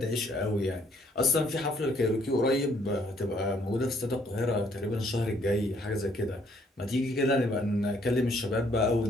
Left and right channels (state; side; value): normal; both; correlation 0.66